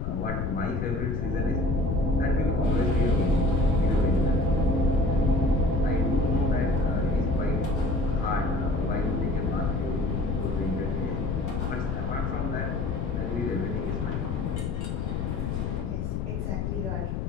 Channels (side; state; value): left; noise; rumble, 2 dB below the sound